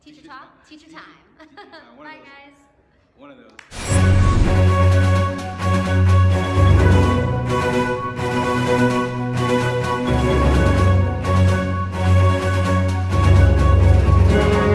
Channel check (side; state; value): both; identical; correlation 1.00